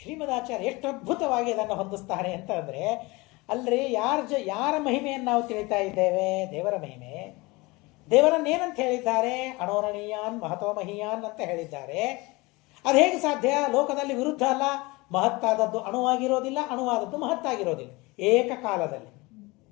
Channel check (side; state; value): right; quieter; 23.8 dB